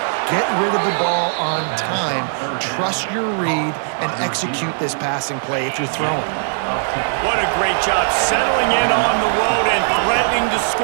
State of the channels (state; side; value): silent; left; digital silence